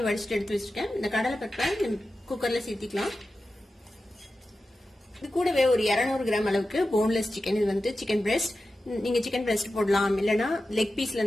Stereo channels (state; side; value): normal; both; correlation 0.93